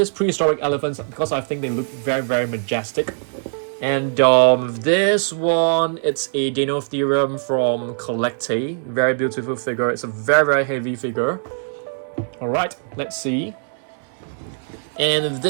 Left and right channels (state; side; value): silent; left; digital silence